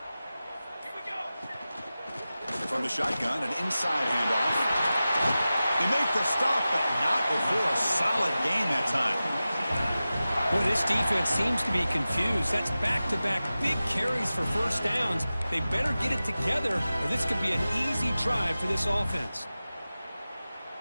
From the shotgun, an inside handoff. They make the stop, but not before a solid gain that time. Boy, this defense seems to be confused. That's back-to-back big carries for first downs. They better get it together, or this could be an easy drive for this offense.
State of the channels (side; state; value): both; inverted; correlation -0.95